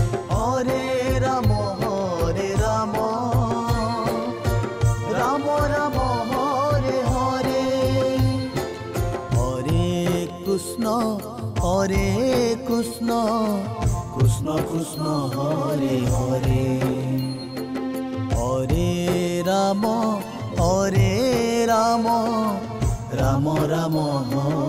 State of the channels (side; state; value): both; identical; correlation 1.00